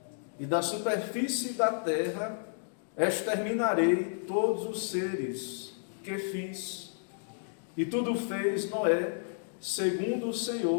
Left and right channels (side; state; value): right; silent; digital silence